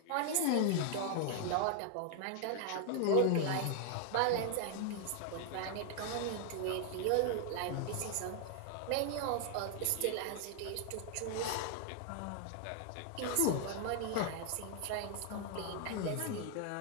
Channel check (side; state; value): both; different; correlation 0.00